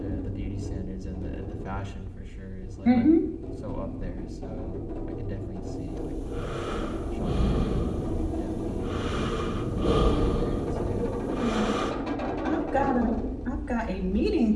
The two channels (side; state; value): both; identical; correlation 1.00